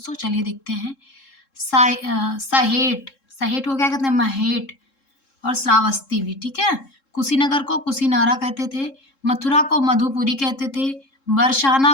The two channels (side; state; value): right; late; 3.7 ms